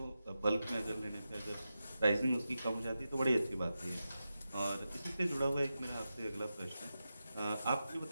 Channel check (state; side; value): inverted; both; correlation -0.91